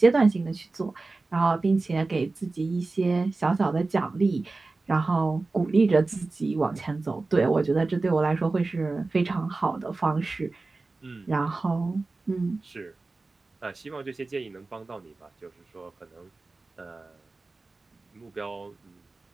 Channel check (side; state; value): left; quieter; 3.5 dB